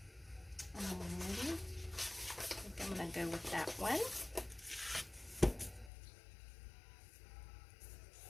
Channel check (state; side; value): drops out; right; at 5.9 s